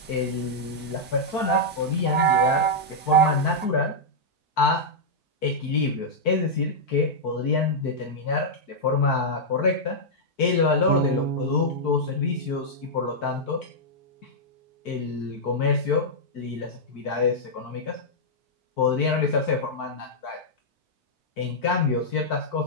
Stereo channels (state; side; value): normal; both; correlation -0.07